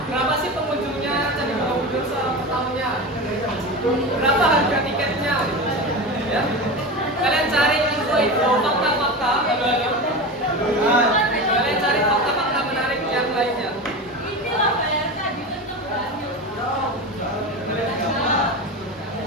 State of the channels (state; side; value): normal; both; correlation 0.25